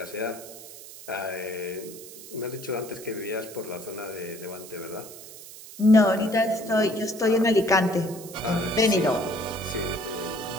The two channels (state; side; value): noise; right; hiss, 15 dB below the sound